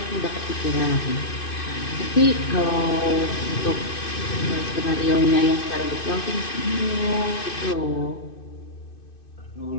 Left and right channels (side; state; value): right; late; 2.6 ms